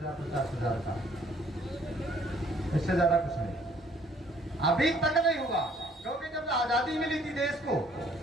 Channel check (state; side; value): normal; both; correlation 0.61